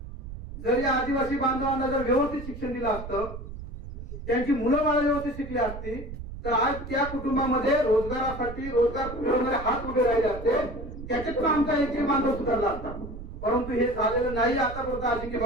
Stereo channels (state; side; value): noise; right; rumble, 11 dB below the sound